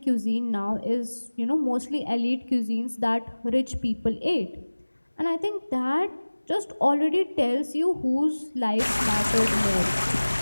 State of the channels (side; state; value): both; inverted; correlation -1.00